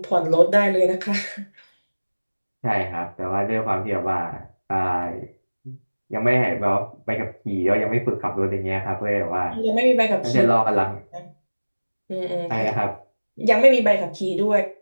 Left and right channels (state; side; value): inverted; both; correlation -1.00